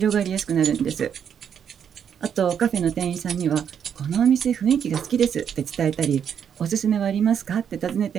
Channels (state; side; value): quieter; left; 8.1 dB